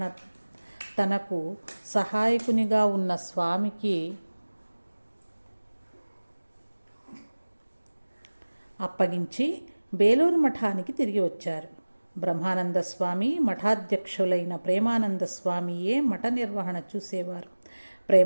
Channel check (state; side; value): inverted; both; correlation -1.00